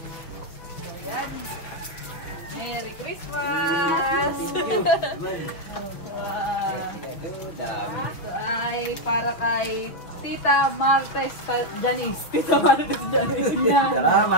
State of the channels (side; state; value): right; late; 6.3 ms